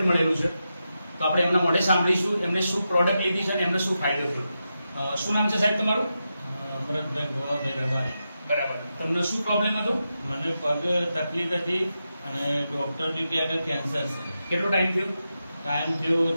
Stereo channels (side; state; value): both; inverted; correlation -0.89